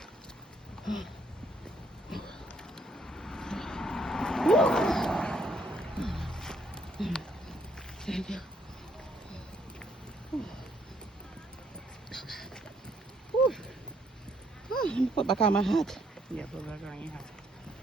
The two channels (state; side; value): normal; both; correlation 0.69